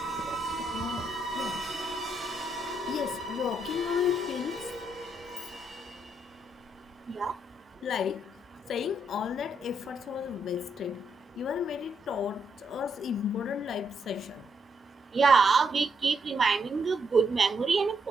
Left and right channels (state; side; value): normal; both; correlation 0.76